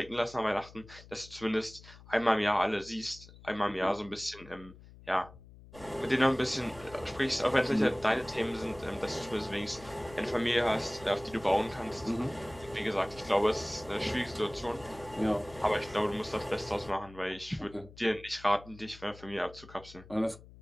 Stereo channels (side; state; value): left; noise; hum, 20 dB below the sound